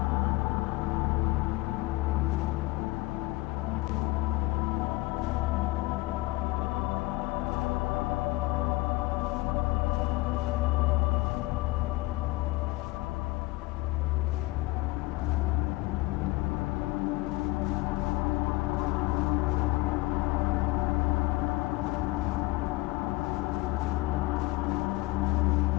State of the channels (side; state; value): right; quieter; 21.0 dB